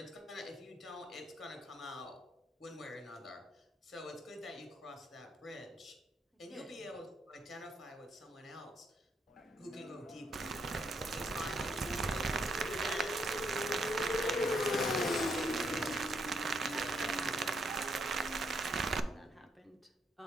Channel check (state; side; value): normal; both; correlation 0.74